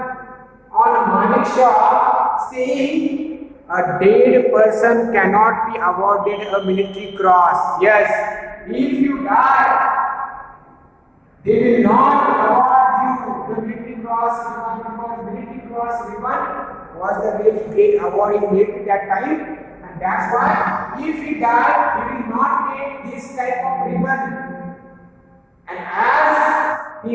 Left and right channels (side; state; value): both; identical; correlation 1.00